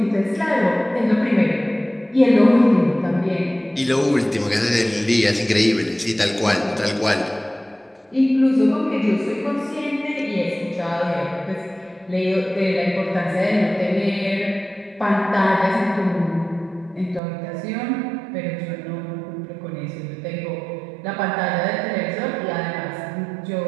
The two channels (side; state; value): left; drops out; at 17.2 s